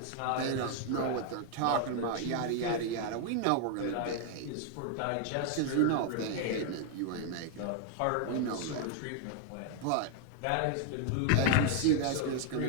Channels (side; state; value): both; different; correlation 0.00